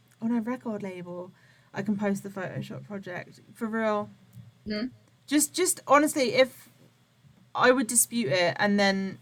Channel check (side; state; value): both; identical; correlation 1.00